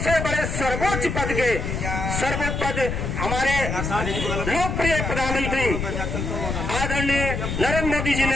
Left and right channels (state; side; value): noise; left; rumble, 3 dB below the sound